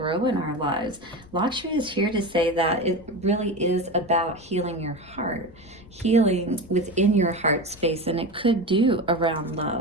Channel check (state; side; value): noise; left; rumble, 23 dB below the sound